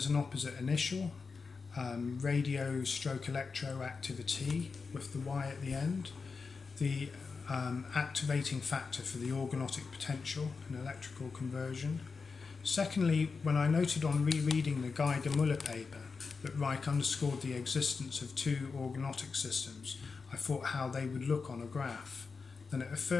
an opposite initial, radio/electro activity with the Y at the end, the activating factor for the organotic potential and electrical conversion. Secondly, when I noted on rereading the Geiger-Müller paper that Ryk underscored the existence of 2 organotic systems, I thought how they would look on a graph. Then it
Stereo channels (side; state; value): right; quieter; 4.8 dB